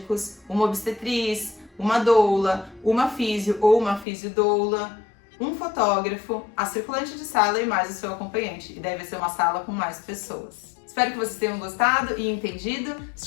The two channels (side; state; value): right; drops out; at 4.0 s